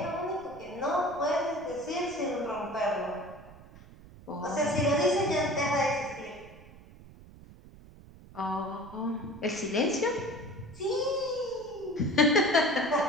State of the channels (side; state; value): right; noise; rumble, 20 dB below the sound